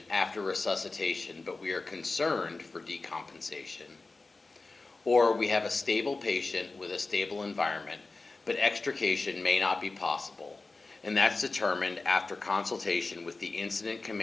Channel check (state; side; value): quieter; right; 3.6 dB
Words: after resuscitation, but we are concerned for decompensation. Or we have a stable patient with a stable environment, but extrication may not be possible, and that's determined after consultation with the incident